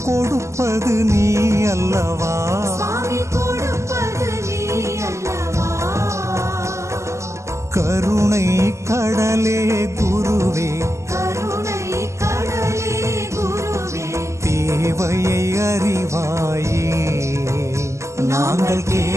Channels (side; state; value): left; late; 0.14 ms